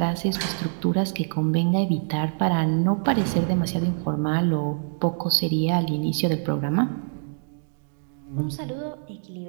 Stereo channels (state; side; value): silent; left; digital silence